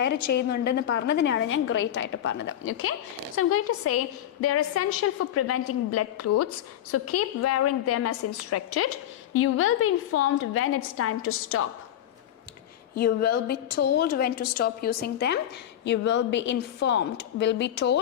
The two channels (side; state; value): right; quieter; 11.3 dB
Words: ചെയ്യുന്നുണ്ടെന്ന് പറഞ്ഞതിനാണ് ഞാൻ great ആയിട്ട് പറഞ്ഞത്. Okay, so I'm going to say they are essential for preventing blood clots. So keep wearing them as instructed. You will be informed when it's time to stop. You will be told when to stop using them. You will be informed. Will be